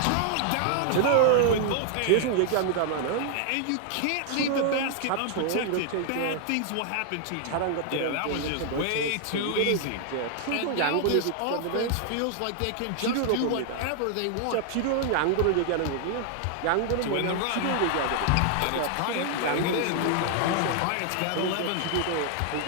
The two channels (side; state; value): both; different; correlation 0.00